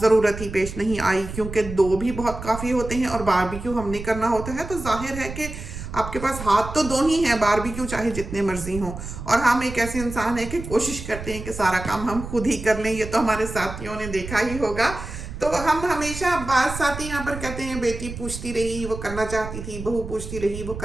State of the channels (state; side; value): noise; right; rumble, 9 dB below the sound